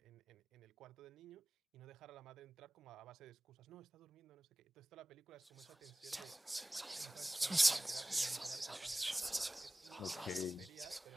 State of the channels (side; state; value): both; normal; correlation 0.97